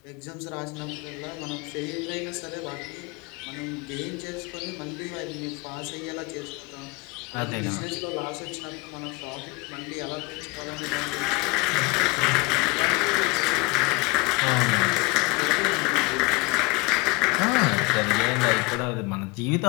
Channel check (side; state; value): right; quieter; 26.2 dB